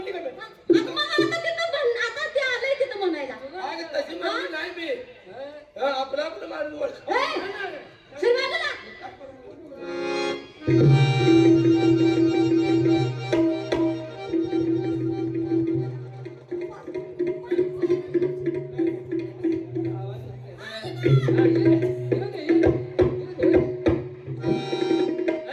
का मी? आता मग आता तिथं आता ते आलंय तिथं म्हणायला अगं तशी म्हणली नाही मी आपलं माणूस ओळख ए, सर बाजूला.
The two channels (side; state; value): both; identical; correlation 1.00